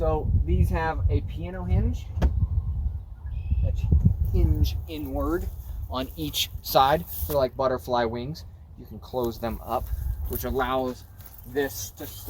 these have a piano hinge that hinge inward on each side. They're like butterfly wings. You can close them up, which allows this to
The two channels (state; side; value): identical; both; correlation 1.00